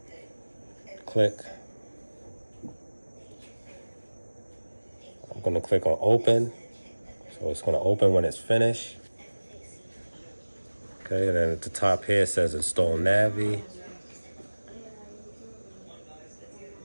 Click. I'm gonna click on open. So it's gonna open when it's finished. Okay, and then at the top here it says install Navi.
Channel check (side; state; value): both; inverted; correlation -1.00